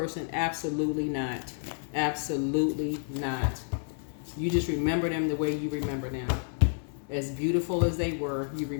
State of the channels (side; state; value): right; silent; digital silence